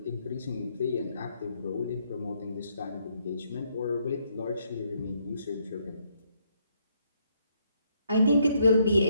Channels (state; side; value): inverted; both; correlation -0.73